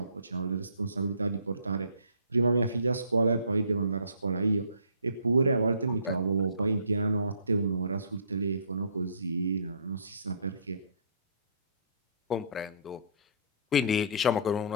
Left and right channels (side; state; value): both; inverted; correlation -0.54